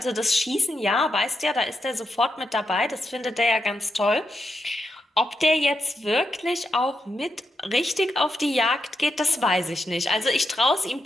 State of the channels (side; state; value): both; normal; correlation 0.84